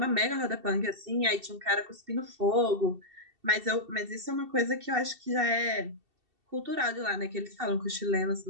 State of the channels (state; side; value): late; left; 2.7 ms